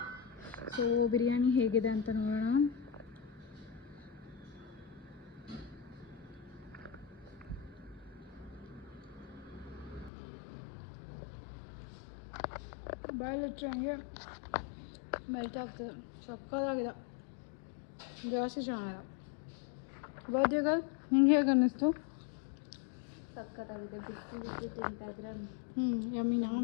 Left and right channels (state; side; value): drops out; right; at 10.1 s